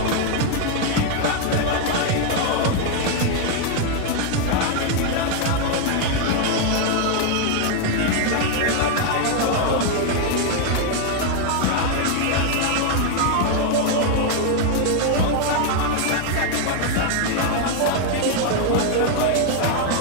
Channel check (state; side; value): different; both; correlation 0.00